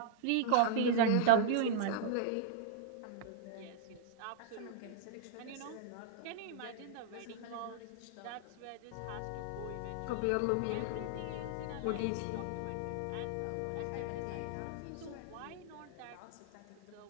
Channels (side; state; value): both; different; correlation -0.01